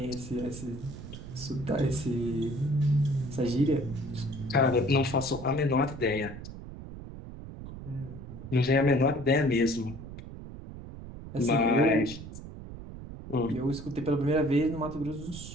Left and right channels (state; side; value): noise; right; rumble, 12 dB below the sound